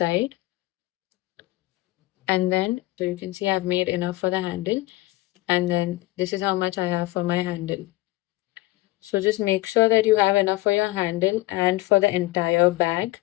and then so you can see I've made enough for the handle, and then this is how much I have for my handle. So just make sure that you have enough for your handle and for the entire bag.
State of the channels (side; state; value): right; quieter; 19.4 dB